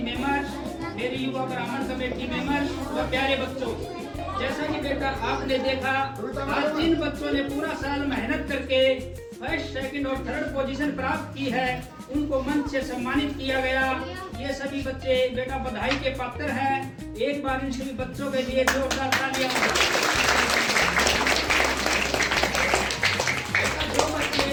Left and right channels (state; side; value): identical; both; correlation 1.00